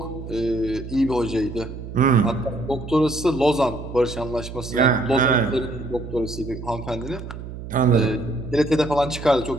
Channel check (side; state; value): right; noise; hum, 10 dB below the sound